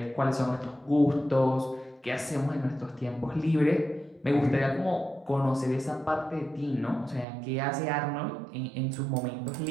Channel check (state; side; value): drops out; left; at 7.2 s